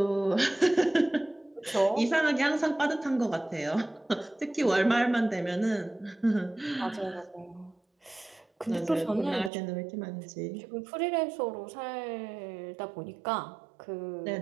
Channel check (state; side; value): drops out; left; at 9.5 s